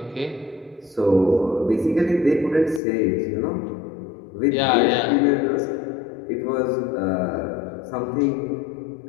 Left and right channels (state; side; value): drops out; right; at 2.8 s